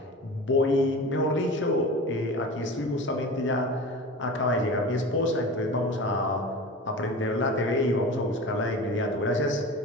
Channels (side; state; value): both; normal; correlation 0.33